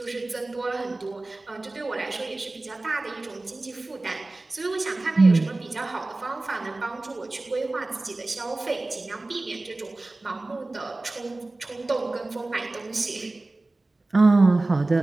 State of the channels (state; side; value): quieter; left; 3.0 dB